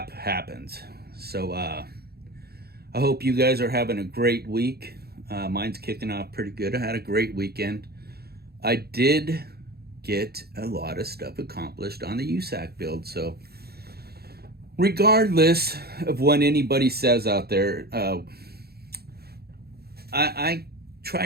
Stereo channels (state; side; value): late; left; 0.46 ms